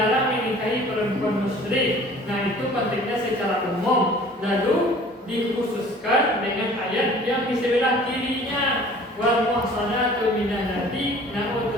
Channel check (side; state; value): both; normal; correlation 0.49